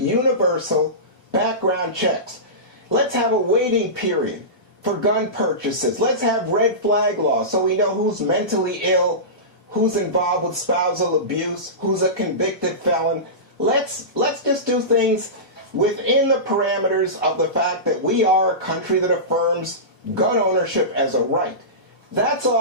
background checks. Let's have a waiting period for gun purchases. Let's have red flag laws so we know who's mentally ill, who's involved with spousal abuse, who's a convicted felon. Let's just do things within the parameters of the fact that we are a country that affirms gun ownership as a right. That's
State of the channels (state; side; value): normal; both; correlation -0.20